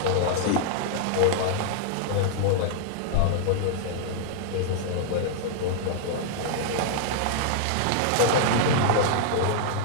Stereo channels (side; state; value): both; different; correlation -0.01